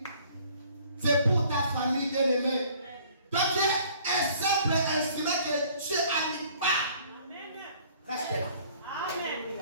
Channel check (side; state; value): both; inverted; correlation -0.56